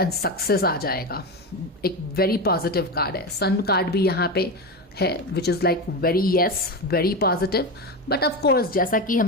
success आ जाएगा. एक वेरी पॉजिटिव कार्ड है. सन कार्ड भी यहाँ पे है, which is like very very positive. But of course, जैसा कि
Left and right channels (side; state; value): both; normal; correlation 0.18